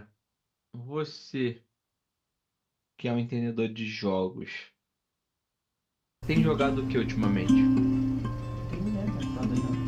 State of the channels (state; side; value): identical; both; correlation 1.00